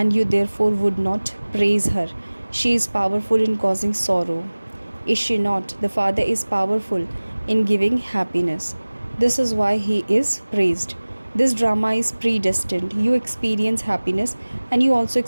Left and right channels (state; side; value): inverted; both; correlation -1.00